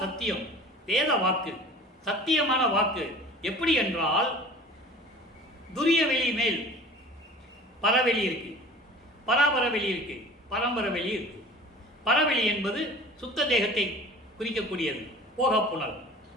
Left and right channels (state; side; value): normal; both; correlation 0.43